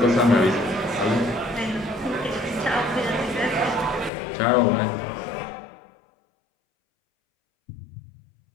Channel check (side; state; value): right; drops out; at 4.1 s